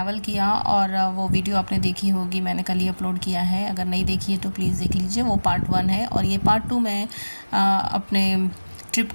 किया और वो वीडियो आपने देखी होगी, मैंने कल ही अपलोड किया है। अगर नहीं देखी है तो प्लीज़ देख लीजिए, वो पार्ट 1 है और ये पार्ट 2 मैं अपने ट्रिप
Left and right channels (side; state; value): both; inverted; correlation -1.00